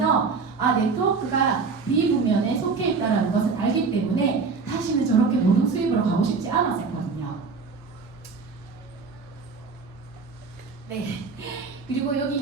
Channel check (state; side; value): quieter; left; 4.8 dB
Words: 네트워크가 B 분면에 속해 있다는 것을 알기 때문에 다시는 저렇게 노동 수입으로 가고 싶지 않았었거든요. 네. 그리고